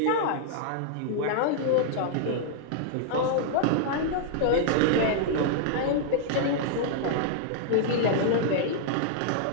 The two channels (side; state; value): both; different; correlation -0.01